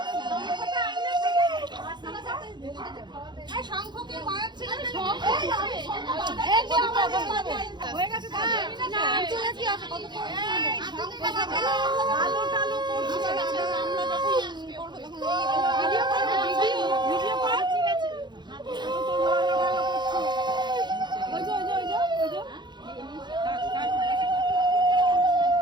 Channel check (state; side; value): late; left; 0.21 ms